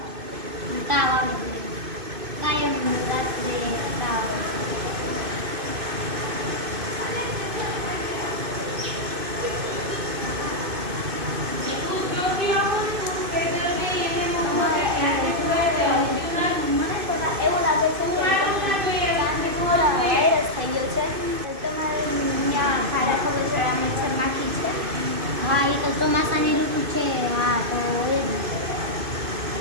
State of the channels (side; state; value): left; late; 2.5 ms